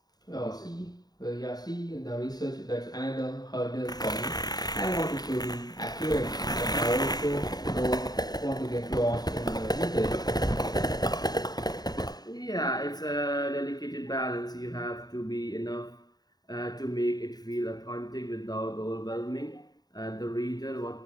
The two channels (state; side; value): late; right; 0.19 ms